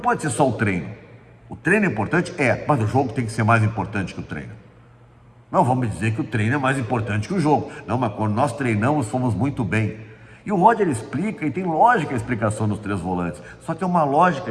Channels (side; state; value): both; identical; correlation 1.00